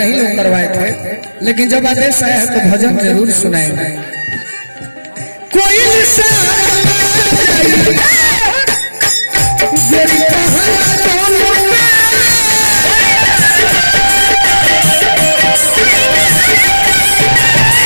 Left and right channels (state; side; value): inverted; both; correlation -1.00